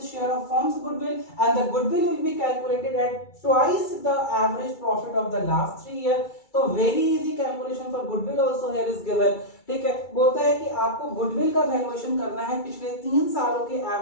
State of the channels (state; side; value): late; right; 2.3 ms